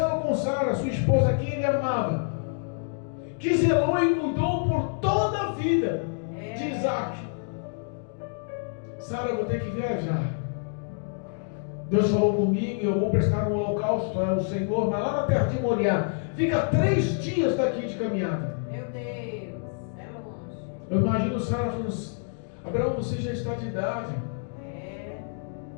com Sara, sua esposa, que ele amava, que zelou e cuidou por toda a vida de Isaac. Sara, eu vou ter que viajar. Deus falou comigo e eu vou prestar um holocausto ao Senhor, mas lá na terra de Moriá, fica 3 dias daqui de caminhada. Meu Deus, é longe. Eu imagino Sara falando: Abraão, você já está de idade.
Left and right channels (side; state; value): right; silent; 60 dB below the other